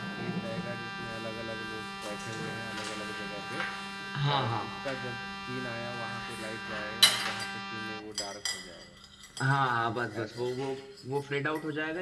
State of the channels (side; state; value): both; identical; correlation 1.00